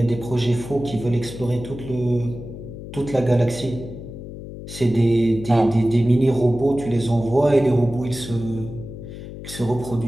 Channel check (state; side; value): noise; left; hum, 11 dB below the sound